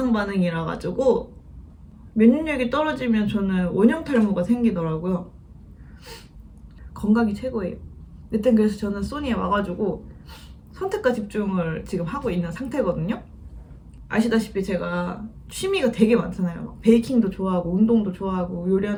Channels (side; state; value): both; identical; correlation 1.00